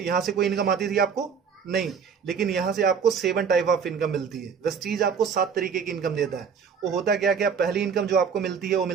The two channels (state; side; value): quieter; left; 6.5 dB